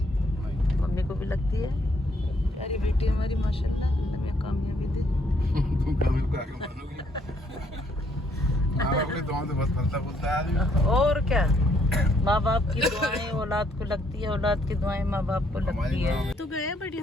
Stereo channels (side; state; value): both; normal; correlation 0.69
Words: मम्मी को भी लगती है, प्यारी बेटी हमारी माशाल्लाह, हमें कामयाबी दे। तुम कभी को आगे मानोगी, माँ बाप की दुआओं से बस फलता फूलता है आदमी। और क्या, माँ बाप की दुआएं औलाद को लगती है, औलाद की दुआएं माँ बाप को लगती है। तो गए, बट